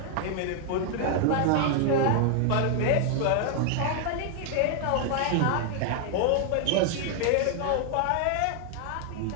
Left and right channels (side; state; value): both; different; correlation 0.00